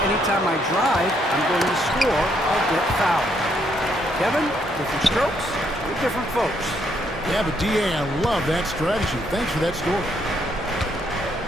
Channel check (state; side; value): normal; both; correlation 0.73